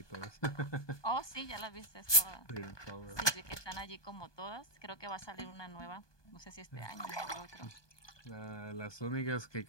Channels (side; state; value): right; late; 1.2 ms